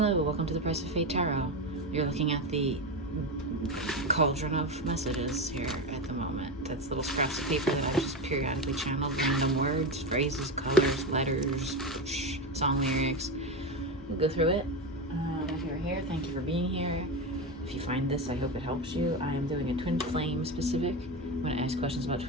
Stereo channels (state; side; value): normal; both; correlation 0.17